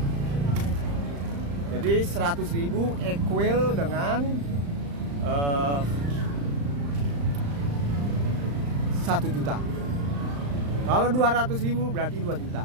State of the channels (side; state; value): left; late; 35 ms